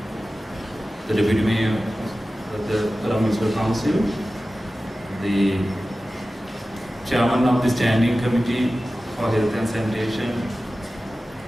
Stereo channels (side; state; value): both; normal; correlation 0.95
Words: the Deputy Mayor of the Colombo Municipal Council, the Chairman of the Standing Committee for Health and Sanitation,